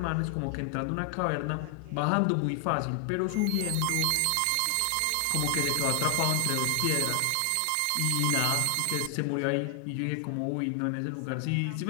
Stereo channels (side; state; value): both; different; correlation 0.00